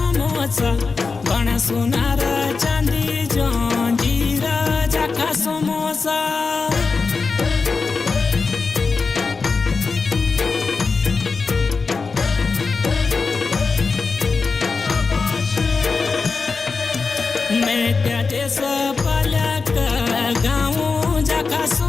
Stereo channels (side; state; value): right; quieter; 4.6 dB